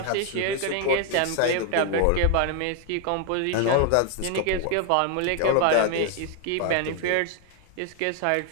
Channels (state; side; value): different; both; correlation 0.01